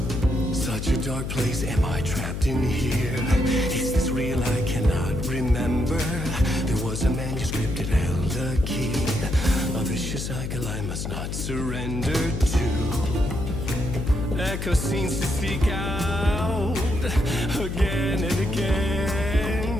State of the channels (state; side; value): noise; left; hum, 4 dB below the sound